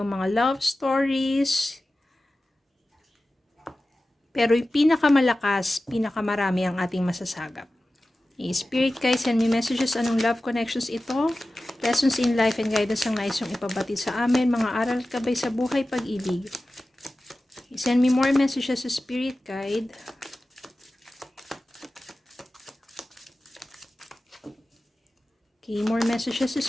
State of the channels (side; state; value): both; normal; correlation 0.95